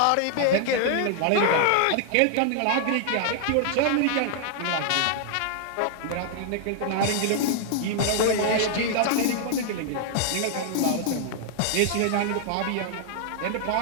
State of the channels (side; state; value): both; different; correlation -0.01